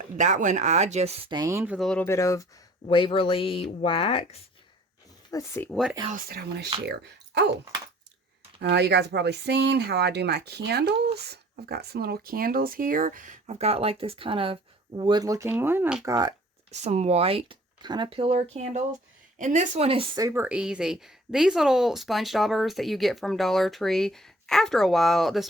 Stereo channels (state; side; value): normal; both; correlation 0.53